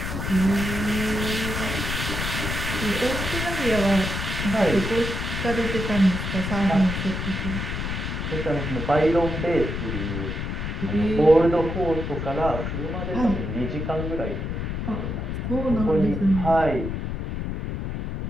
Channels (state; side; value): noise; left; rumble, 3 dB below the sound